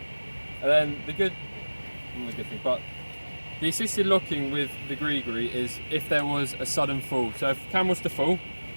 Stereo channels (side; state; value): both; inverted; correlation -1.00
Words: And then not the good thing, but the assisted locking with the grigri is if there was a sudden fall. So if Cam was to fall,